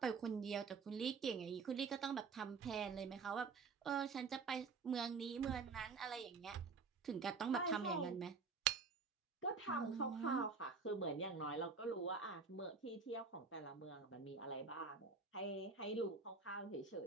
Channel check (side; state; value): left; quieter; 4.9 dB